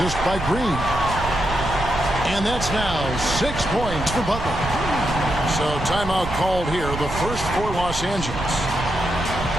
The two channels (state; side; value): noise; right; rumble, 8 dB below the sound